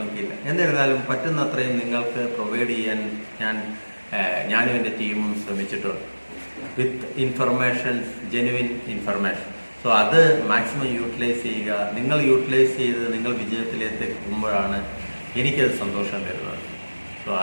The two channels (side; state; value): both; inverted; correlation -1.00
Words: എന്നിരുന്നാലും പറ്റുന്നത്രയും നിങ്ങൾക്ക് പ്രൊവൈഡ് ചെയ്യാൻ ഞാനും എൻ്റെ ടീമും ശ്രമിച്ചിട്ടുണ്ട് വിത്ത് ഇൻഫർമേഷൻസ്, ജെനുവിൻ ഇൻഫർമേഷൻ. സോ അത് മാക്സിമം യൂട്ടിലൈസ് ചെയ്യുക. നിങ്ങൾ യൂട്ടിലൈസ് ചെയ്ത് നിങ്ങൾ വിജയത്തിലേക്ക് എത്തുമ്പോഴാണ് എനിക്കത് സന്തോഷം തരുന്നത്. സോ